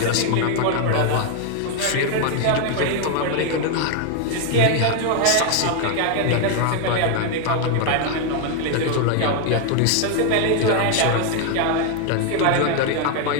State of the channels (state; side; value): different; both; correlation 0.00